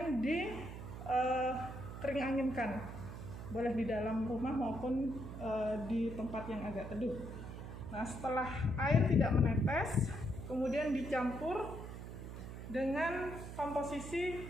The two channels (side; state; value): right; noise; hum, 9 dB below the sound